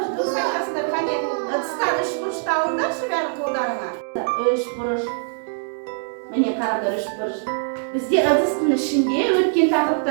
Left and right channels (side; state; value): left; silent; digital silence